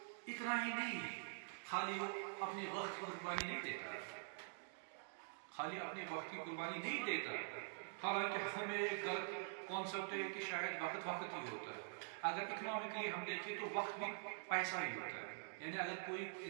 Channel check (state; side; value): silent; left; digital silence